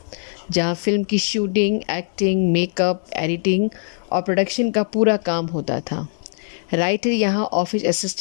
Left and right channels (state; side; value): silent; right; 65 dB below the other